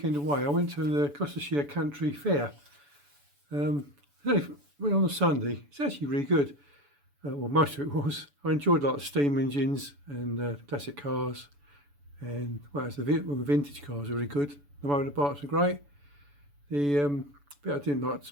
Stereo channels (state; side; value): late; left; 7.0 ms